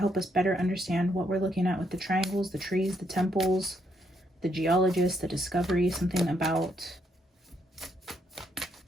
us better understand what we're looking at with the triangles, the trees, the temples, the geologist, the discovery, something about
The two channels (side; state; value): both; normal; correlation 0.75